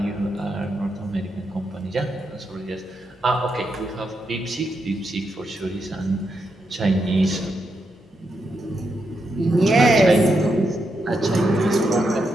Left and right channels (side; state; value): both; normal; correlation 0.83